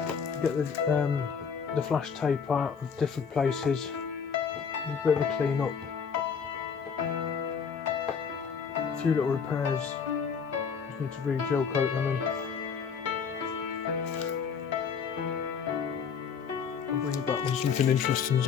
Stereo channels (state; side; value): quieter; right; 6.5 dB